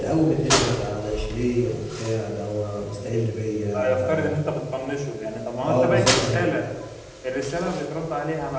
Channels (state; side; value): identical; both; correlation 1.00